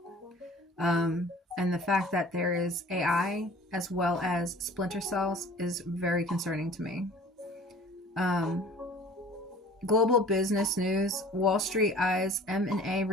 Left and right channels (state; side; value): normal; both; correlation 0.47